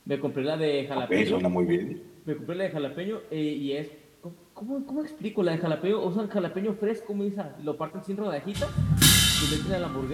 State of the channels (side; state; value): both; identical; correlation 1.00